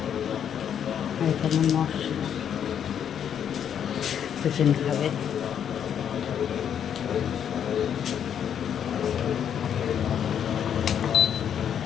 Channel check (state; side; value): quieter; right; 8.8 dB